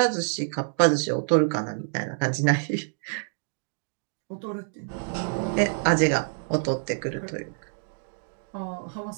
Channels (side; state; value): left; silent; digital silence